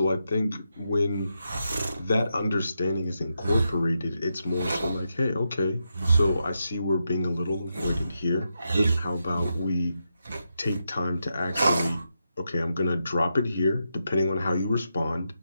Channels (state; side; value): inverted; both; correlation -0.85